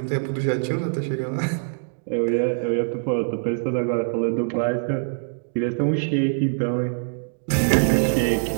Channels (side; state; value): left; silent; digital silence